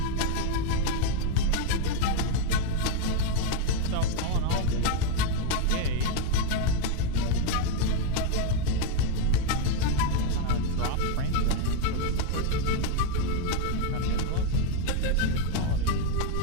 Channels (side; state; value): both; different; correlation 0.01